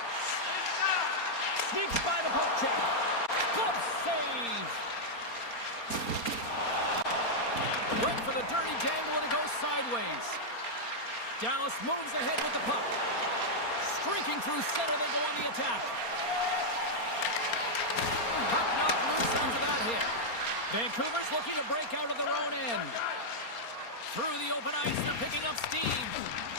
Sneaks by the poke check. Glove save. Went for the dirty dangle, and it goes sideways. Dallas moves ahead with the puck. Streaking through center, they go on the attack. Puck knocked loose after that hit. Vancouver's looking to break out of their own end. Through the open ice, they're picking up steam.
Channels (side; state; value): right; late; 4.3 ms